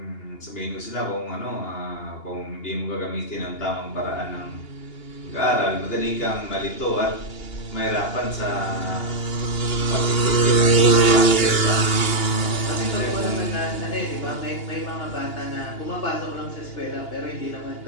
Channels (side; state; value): right; late; 2.8 ms